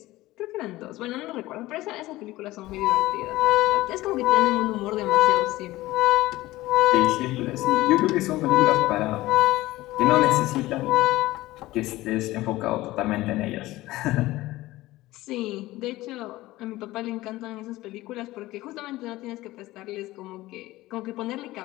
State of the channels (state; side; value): quieter; right; 17.8 dB